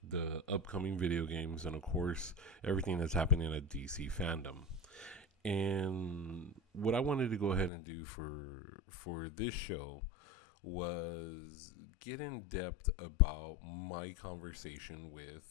the upcoming video games, and of course, everything that's happening at DC fandom. And what I wanted to go ahead and do for this show was get in depth about my conversation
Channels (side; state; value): right; drops out; at 7.7 s